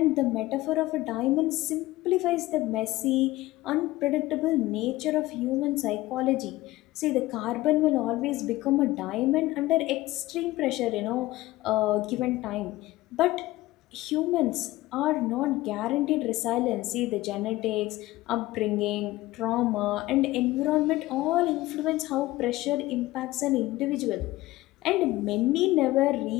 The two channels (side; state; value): right; quieter; 17.9 dB